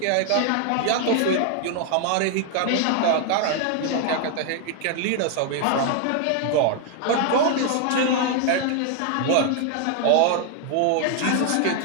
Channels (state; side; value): different; both; correlation 0.00